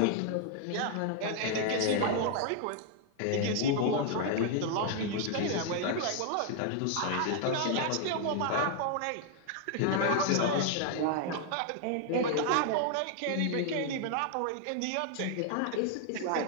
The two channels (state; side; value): different; both; correlation 0.00